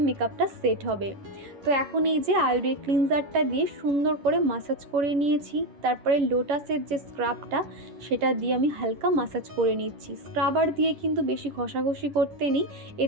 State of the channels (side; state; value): left; late; 11 ms